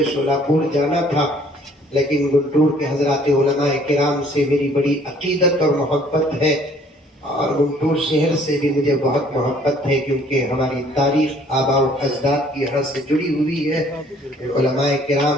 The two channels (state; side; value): normal; both; correlation 0.59